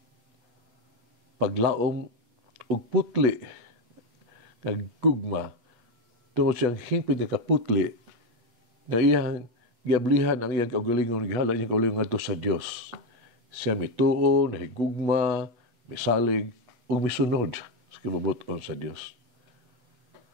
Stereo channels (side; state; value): left; late; 8.3 ms